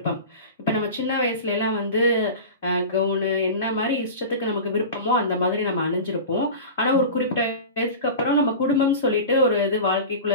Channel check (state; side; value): inverted; both; correlation -0.31